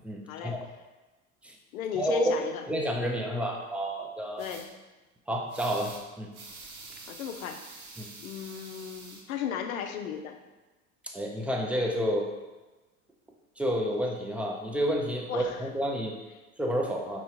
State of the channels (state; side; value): normal; both; correlation 0.59